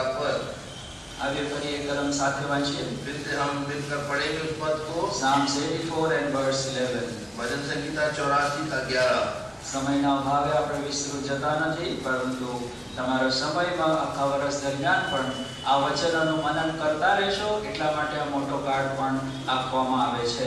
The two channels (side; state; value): both; identical; correlation 1.00